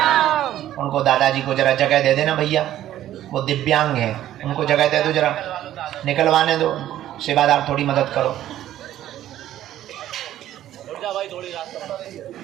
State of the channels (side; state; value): left; quieter; 12.7 dB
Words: उनको दादाजी को जरा जगह दे देना भैया, वो दिव्यांग है, उनको जगह दे दो, जरा निकलवाने दो। सेवादार थोड़ी मदद करो।